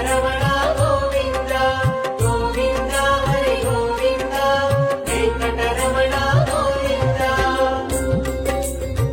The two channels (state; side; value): identical; both; correlation 1.00